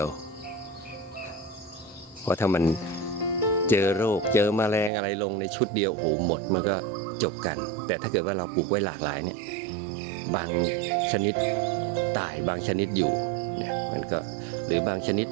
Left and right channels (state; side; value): drops out; left; at 4.9 s